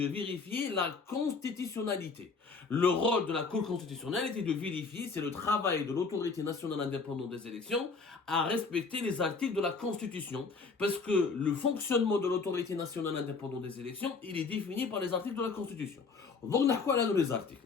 vérifier la constitutionnalité. Le rôle de la Cour constitutionnelle était de vérifier si le travail de l'autorité nationale indépendante des élections a respecté les articles de la Constitution, parce que le fonctionnement de l'autorité nationale indépendante des élections, il est défini par les articles de la Constitution. Donc, on a quoi là dans les articles?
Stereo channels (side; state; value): right; quieter; 4.5 dB